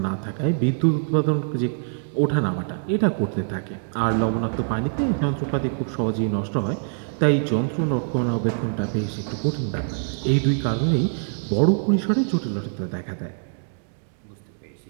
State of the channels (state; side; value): silent; left; digital silence